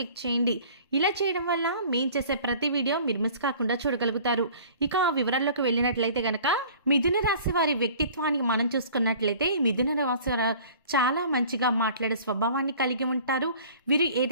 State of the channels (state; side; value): inverted; both; correlation -0.48